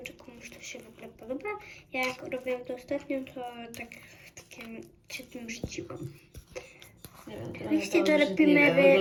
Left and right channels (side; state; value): both; identical; correlation 1.00